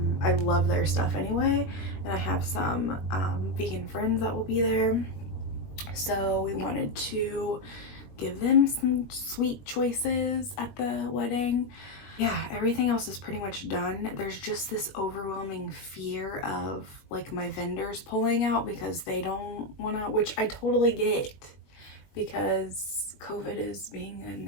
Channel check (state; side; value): late; right; 21 ms